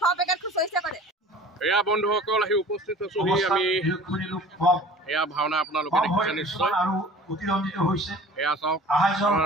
এয়া বন্ধুসকল আহি উপস্থিত আছোহি আমি। এয়া ভাওনা আপোনালোকে দেখিছে নিশ্চয়। এয়া চাওক,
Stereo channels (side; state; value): both; normal; correlation 0.44